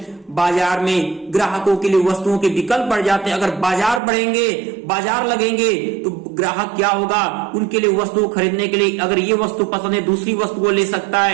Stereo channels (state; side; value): drops out; left; at 4.0 s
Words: बाजार में ग्राहकों के लिए वस्तुओं के विकल्प बढ़ जाते हैं। अगर बाजार बढ़ेंगे, बाजार लगेंगे तो ग्राहक क्या होगा? उनके लिए वस्तु खरीदने के लिए, अगर ये वस्तु पसंद है दूसरी वस्तु को ले सकता